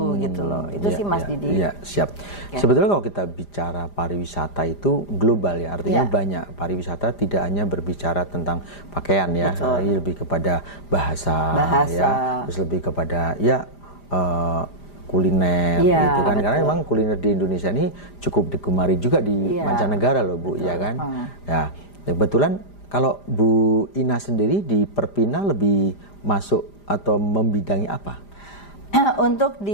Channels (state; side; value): late; right; 5.0 ms